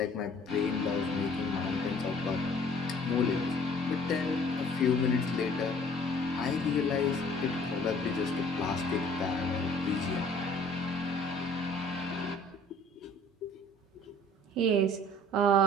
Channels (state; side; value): normal; both; correlation 0.54